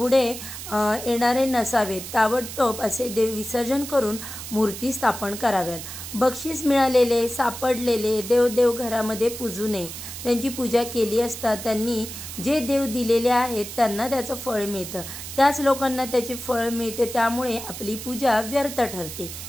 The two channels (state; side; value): noise; right; hiss, 10 dB below the sound